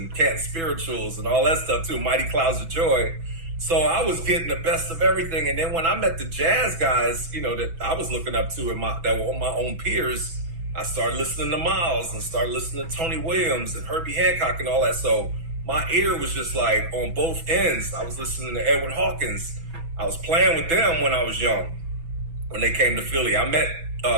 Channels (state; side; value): late; left; 6.1 ms